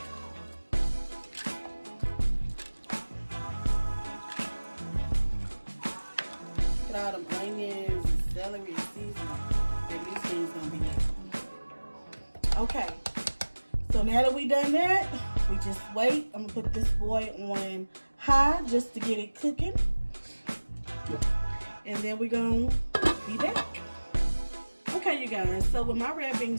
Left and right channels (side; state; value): both; inverted; correlation -1.00